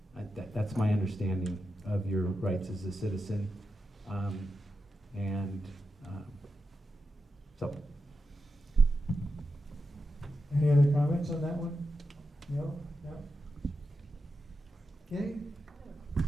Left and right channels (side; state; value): both; normal; correlation 0.88